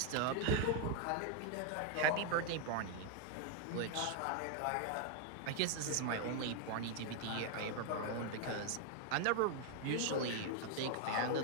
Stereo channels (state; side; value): different; both; correlation 0.00